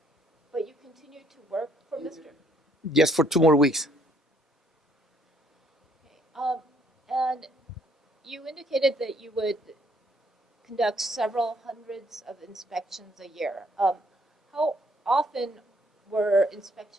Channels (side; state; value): both; normal; correlation 0.66